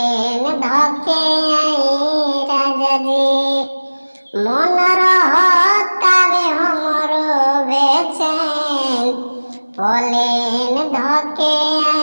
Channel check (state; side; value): inverted; both; correlation -1.00